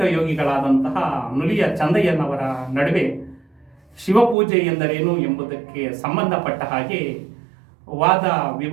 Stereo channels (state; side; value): drops out; left; at 4.4 s